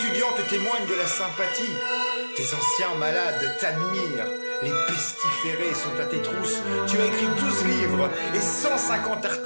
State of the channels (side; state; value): both; inverted; correlation -1.00